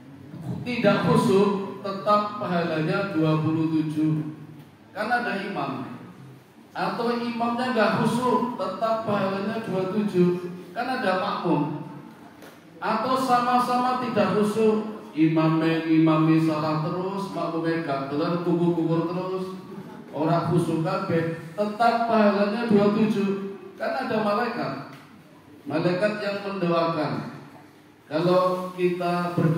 tidak khusyuk, tetap pahalanya 27. Kan ada imam. Atau imamnya nggak khusyuk, tetap pahalanya 27. Kan ada makmum. Atau sama-sama tidak khusyuk, imami salah terus, makmumnya gagelan kubur terus, orang khusyuk kabeh, tetap pahalanya 27. Kan ada malaikat yang mendoakan. Kalau kita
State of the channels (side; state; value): both; identical; correlation 1.00